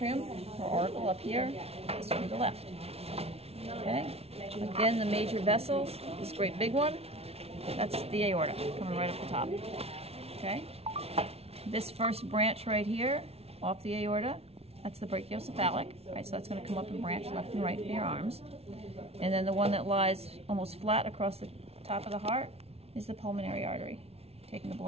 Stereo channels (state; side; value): late; left; 0.30 ms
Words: or auricle up here. This would be the left. Okay? Again, the major vessels, this great big one, that's the aorta, coming right up the top. Okay? This first branch right here, off the aorta, that's the brachiocephalic, right? So that's going to come up and branch left and right for your arms. And then the one that lies almost flat across the top of the heart is the pulmonary artery, taking the